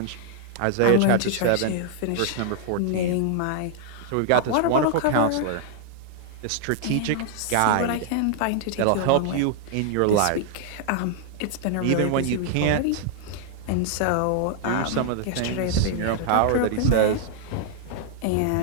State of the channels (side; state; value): both; different; correlation -0.01